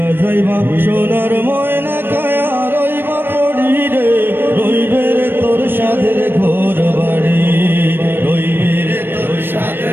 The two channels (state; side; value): late; left; 0.098 ms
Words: যাইবা সোনার ময়না কায়া রইবা পড়ি রে, রইবে রে তোর সাধের ঘর বাড়ি, রইবে রে তোর